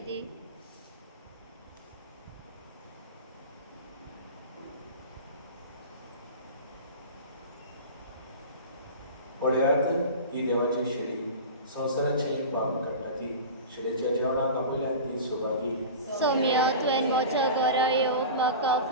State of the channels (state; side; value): inverted; both; correlation -0.32